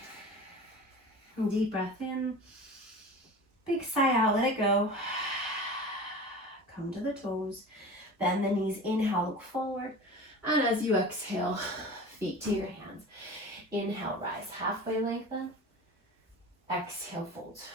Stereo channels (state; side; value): normal; both; correlation 0.35